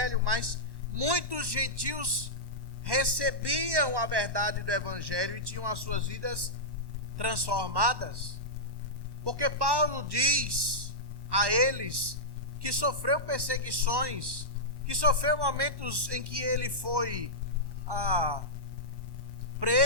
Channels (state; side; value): late; left; 1.1 ms